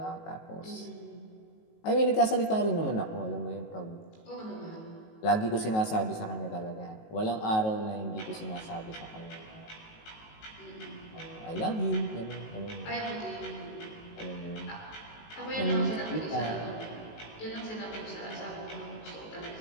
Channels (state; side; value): late; right; 19 ms